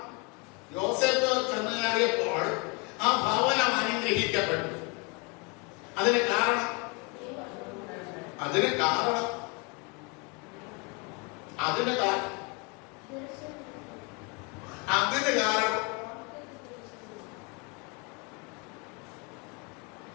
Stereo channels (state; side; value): quieter; right; 30.8 dB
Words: യോസേപ്പ് ചെന്ന് കയറിയപ്പോൾ ആ ഭവനം അനുഗ്രഹിക്കപ്പെട്ടു. അതിന് കാരണം